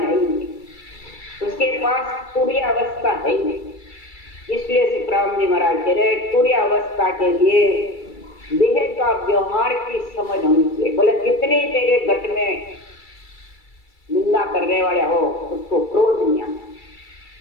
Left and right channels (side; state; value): right; late; 2.3 ms